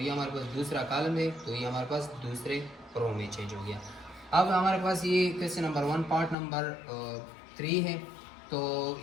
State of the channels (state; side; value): drops out; right; at 6.4 s